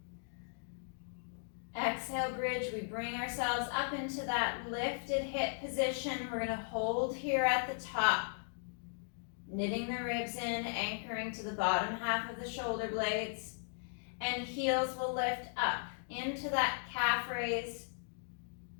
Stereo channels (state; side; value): silent; right; digital silence